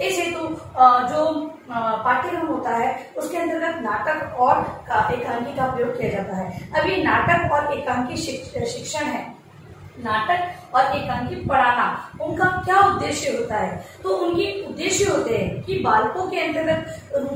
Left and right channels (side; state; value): both; identical; correlation 1.00